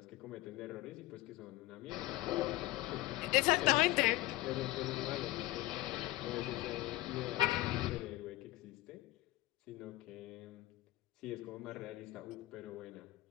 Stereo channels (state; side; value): quieter; right; 17.9 dB